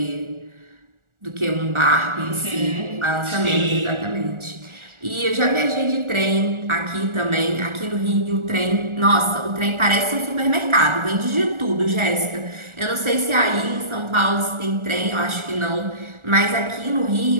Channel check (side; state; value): left; late; 1.4 ms